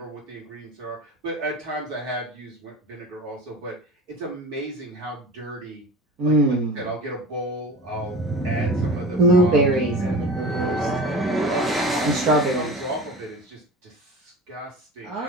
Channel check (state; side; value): normal; both; correlation 0.33